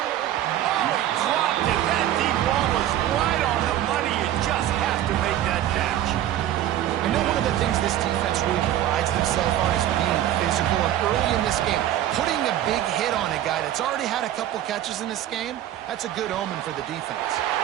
Oh, he dropped it. That deep ball was right on the money. You just have to make that catch. I know one of the things this defense really prides themselves on is being physical, and early in this game, putting a big hit on a guy that's already had a couple catches in this game, that's a good omen for the defense.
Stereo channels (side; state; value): left; quieter; 12.4 dB